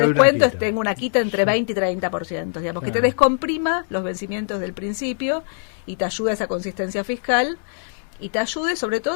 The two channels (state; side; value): silent; right; 64 dB below the other